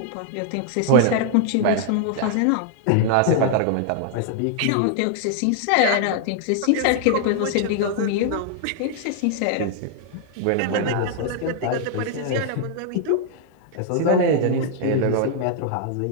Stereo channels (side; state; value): both; different; correlation 0.00